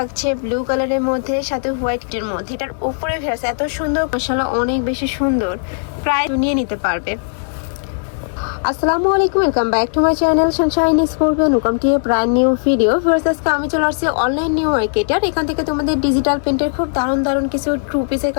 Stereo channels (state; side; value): silent; right; digital silence